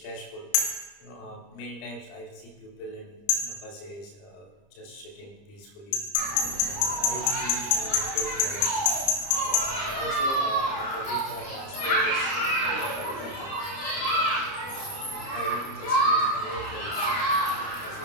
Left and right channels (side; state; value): right; late; 30 ms